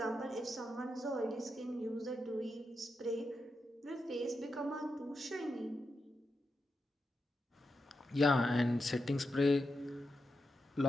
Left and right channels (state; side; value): normal; both; correlation 0.87